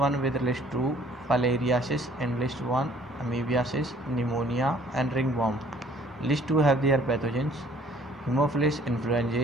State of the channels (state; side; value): normal; both; correlation 0.58